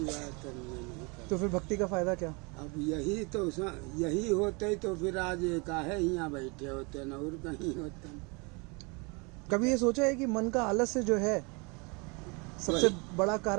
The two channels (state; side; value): quieter; left; 30.2 dB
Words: बात करने नहीं कर। तो फिर भक्ति का फायदा क्या? अब यही तो यही होते तो फिर आज काहे यहाँ बैठे होते न और कहीं होते। कभी ये सोचा है कि मन का आलस्य जो है सबसे बड़ा